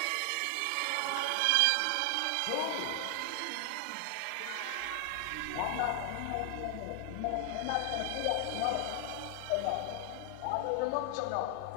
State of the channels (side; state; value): both; different; correlation 0.00